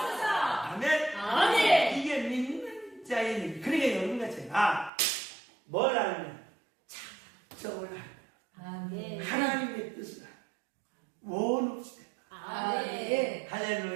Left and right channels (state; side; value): drops out; left; at 4.9 s